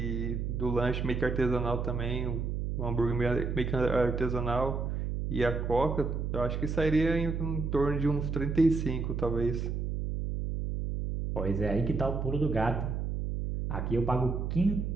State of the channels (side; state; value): right; noise; hum, 2 dB below the sound